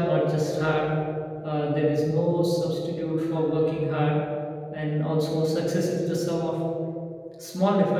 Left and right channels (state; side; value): identical; both; correlation 1.00